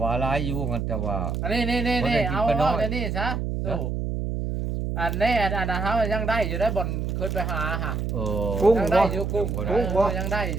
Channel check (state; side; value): noise; right; hum, 2 dB below the sound